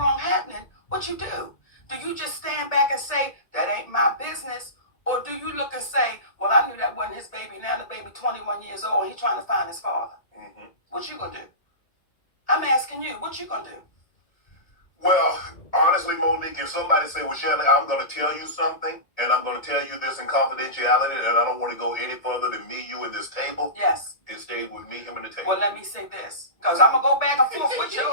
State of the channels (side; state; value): right; late; 1.8 ms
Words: happening, what you do? Do you just stand back and say, that ain't my business? Or do you look and say, well, I knew that wasn't his baby. Now the baby 21 years old and he's trying to find his father. What you gonna do? I'm asking you, what you gonna do? Well, honestly, Monique, if somebody say, well, Shannon, I'm going to tell you something, and I'm going to tell you this in confidentiality, and I don't want to go any further than me, you, and this table. Yes. It stayed with me, him, and the table. Well, let me say this, because I'm going to go back and forth with your